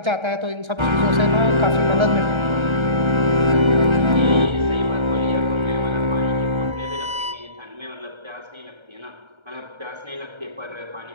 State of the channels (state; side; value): late; left; 1.3 ms